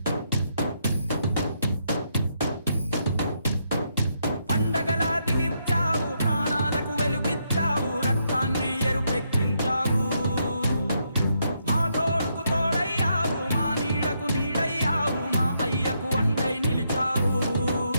పండగలా దిగి వచ్చావు, ప్రాణాలకు వెలుగిచ్చావు, రక్తాన్నే ఎరుపెక్కించావు. మా తోడుకు తోడయ్యావు, మా నీడకు నీడయ్యావు, మా అయ్యకు వండై నిలిచావు.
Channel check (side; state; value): both; inverted; correlation -0.78